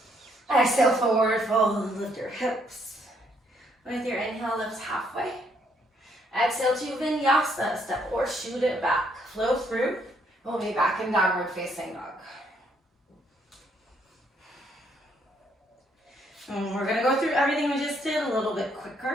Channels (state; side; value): normal; both; correlation 0.70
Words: Exhale, forward fold, lift your hips. With your inhale, lift halfway. Exhale to vinyasa, step or shoot it back. Flow through, we'll be back in downward facing dog. And we're gonna go through everything we just did a little bit